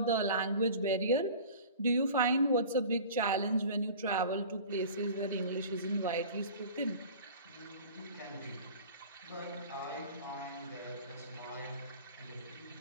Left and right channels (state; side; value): inverted; both; correlation -0.40